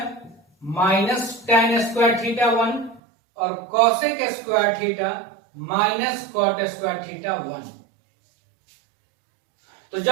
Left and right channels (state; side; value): drops out; left; at 3.0 s